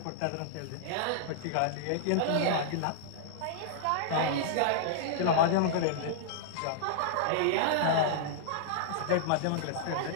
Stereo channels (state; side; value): different; both; correlation -0.02